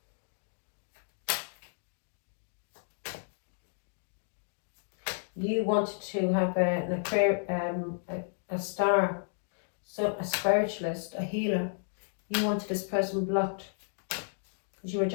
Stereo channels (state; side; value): silent; right; digital silence